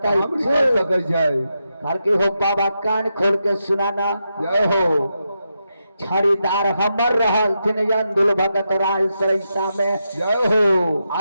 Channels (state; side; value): inverted; both; correlation -0.85